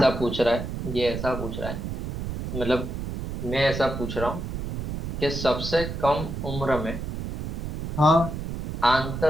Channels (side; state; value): right; noise; rumble, 4 dB below the sound